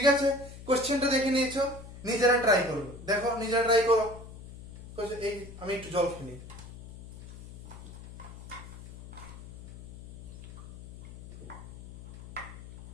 আছে, কোশ্চেনটা দেখে নিয়েছো, নিজেরা try করবে, দেখো নিজেরা try করো। এই আমি একটু জল খেয়ে নিই।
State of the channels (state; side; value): noise; left; hum, 15 dB below the sound